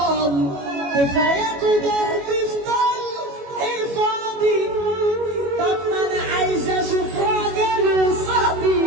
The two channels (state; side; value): late; left; 21 ms